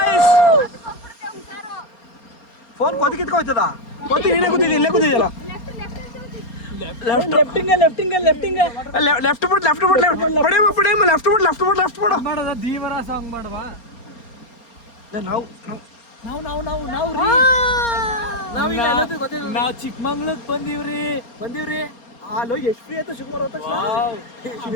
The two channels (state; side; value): late; right; 4.3 ms